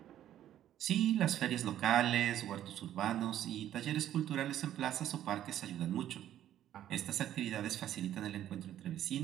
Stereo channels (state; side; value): quieter; left; 11.7 dB